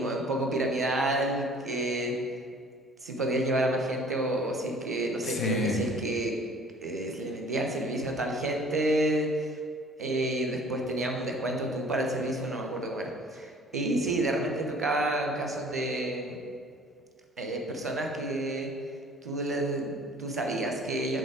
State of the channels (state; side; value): normal; both; correlation 0.51